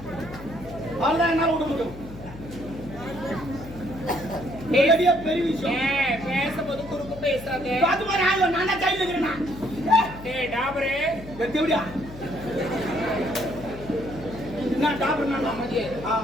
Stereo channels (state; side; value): noise; left; hum, 15 dB below the sound